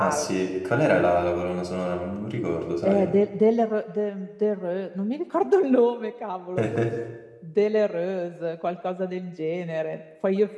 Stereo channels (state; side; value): identical; both; correlation 1.00